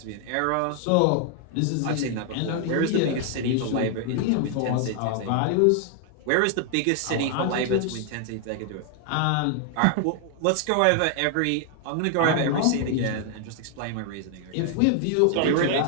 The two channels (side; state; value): both; different; correlation 0.00